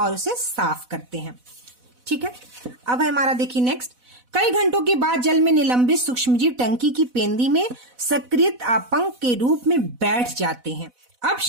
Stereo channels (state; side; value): late; left; 4.0 ms